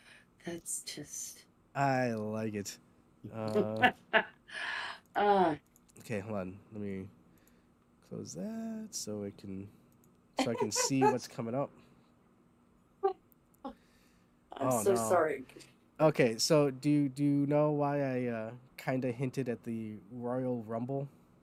That's just. I like it. Okay, hold on. Let me close that so I can see what's coming up. I'm so sorry. Okay, so do you know why I kind of hinted at the Royal Rumble?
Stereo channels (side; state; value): both; identical; correlation 1.00